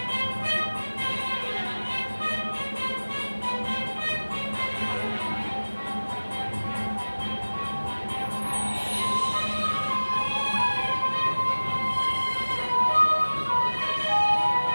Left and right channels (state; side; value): inverted; both; correlation -1.00